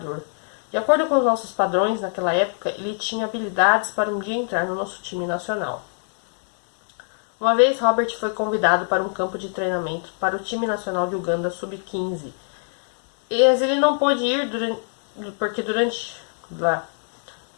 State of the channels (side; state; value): right; silent; 60 dB below the other